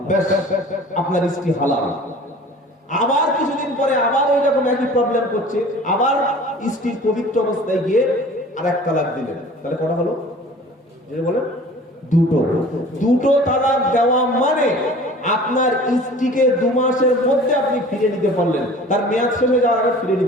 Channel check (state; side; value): normal; both; correlation 0.44